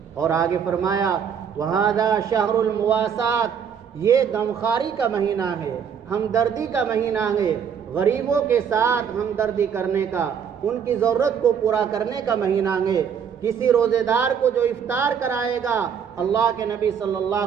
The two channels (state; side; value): quieter; left; 7.5 dB